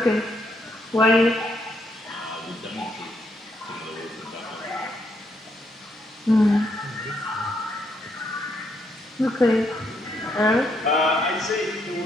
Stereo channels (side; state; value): both; normal; correlation 0.75